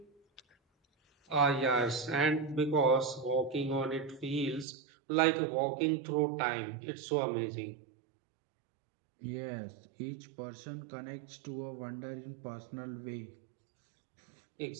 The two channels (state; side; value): drops out; left; at 4.7 s